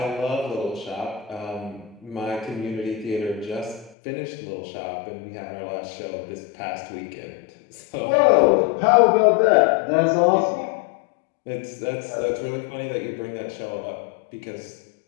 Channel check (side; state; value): right; drops out; at 4.0 s